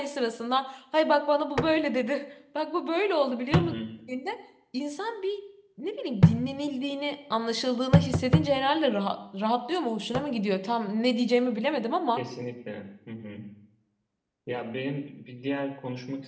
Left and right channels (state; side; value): identical; both; correlation 1.00